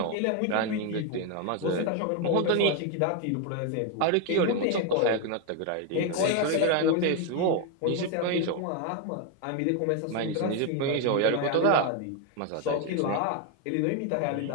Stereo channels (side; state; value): both; different; correlation 0.01